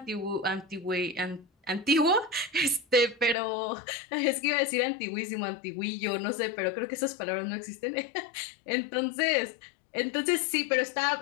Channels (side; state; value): right; drops out; at 3.4 s